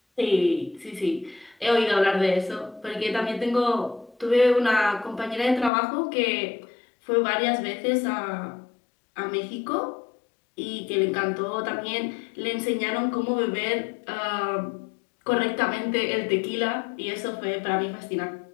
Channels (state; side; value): drops out; right; at 5.7 s